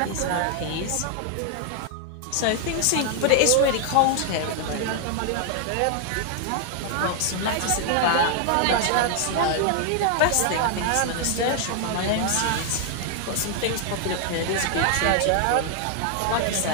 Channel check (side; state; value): both; different; correlation 0.00